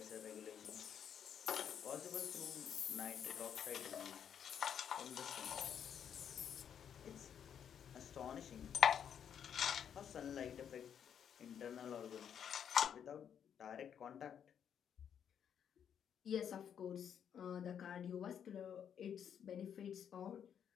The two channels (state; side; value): quieter; right; 8.5 dB